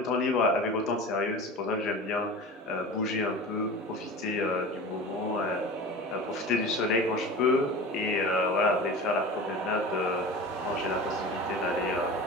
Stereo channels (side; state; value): both; normal; correlation 0.34